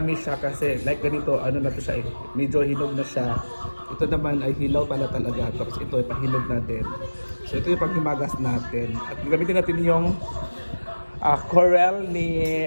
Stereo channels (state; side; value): inverted; both; correlation -1.00